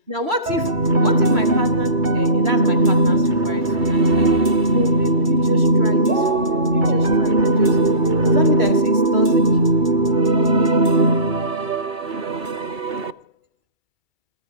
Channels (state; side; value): late; left; 2.3 ms